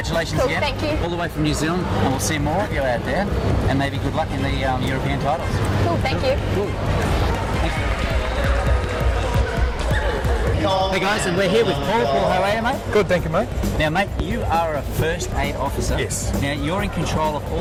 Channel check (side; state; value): both; identical; correlation 1.00